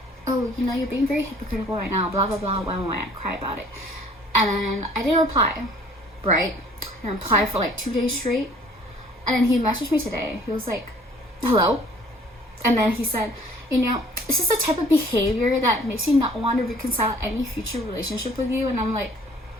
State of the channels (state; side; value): normal; both; correlation 0.54